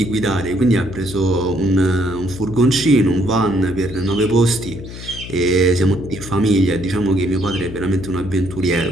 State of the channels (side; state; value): left; noise; hum, 12 dB below the sound